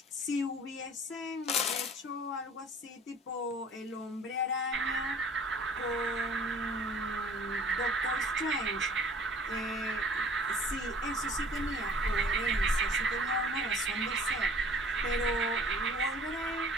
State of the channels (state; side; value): normal; both; correlation 0.49